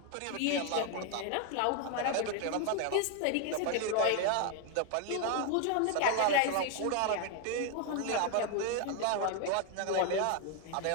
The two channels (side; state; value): both; different; correlation 0.01